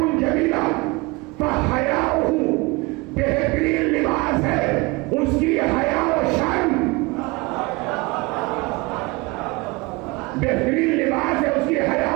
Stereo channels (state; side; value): quieter; left; 24.7 dB